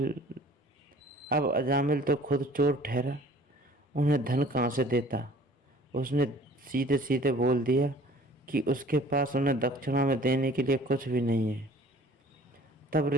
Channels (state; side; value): normal; both; correlation 0.50